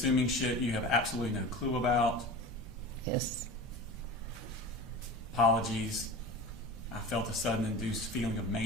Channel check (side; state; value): both; normal; correlation 0.33